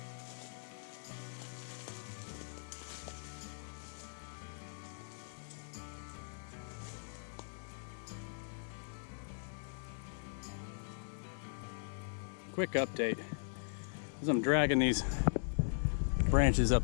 Quick update, as I'm dragging these branches up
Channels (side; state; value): right; silent; digital silence